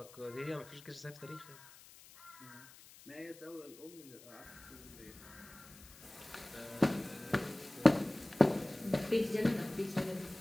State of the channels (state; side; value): noise; left; hiss, 21 dB below the sound